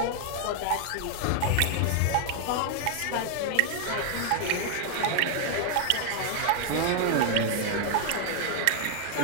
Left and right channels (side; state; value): both; different; correlation 0.00